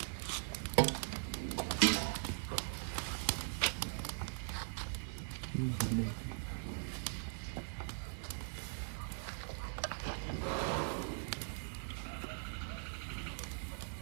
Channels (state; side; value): silent; left; 51 dB below the other